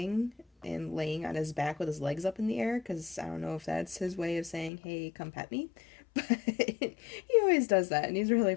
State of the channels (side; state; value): right; drops out; at 4.7 s